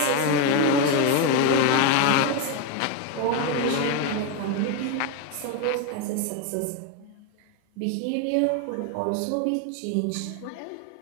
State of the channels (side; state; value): both; different; correlation 0.02